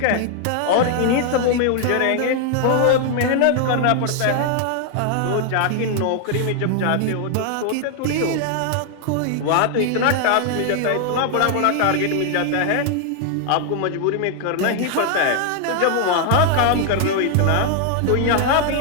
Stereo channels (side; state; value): both; different; correlation 0.00